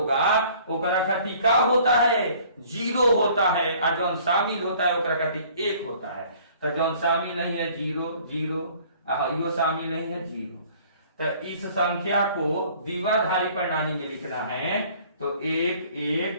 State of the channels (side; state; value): both; inverted; correlation -0.54